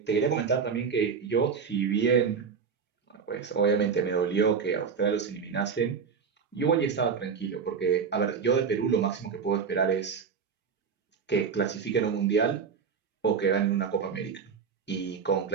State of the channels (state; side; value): quieter; left; 6.1 dB